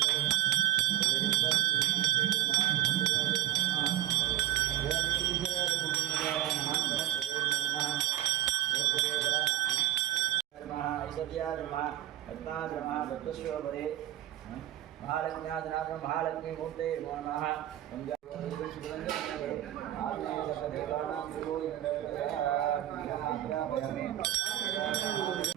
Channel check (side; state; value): left; quieter; 13.9 dB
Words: महालक्ष्मी मूर्ते नमः